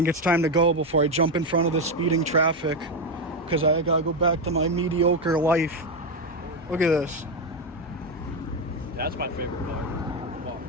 it's time to go before I jump in front of the speeding traffic. Because I gotta go back to my mediocre life. Look at this. That's my favorite car. Come on.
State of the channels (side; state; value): both; normal; correlation 0.08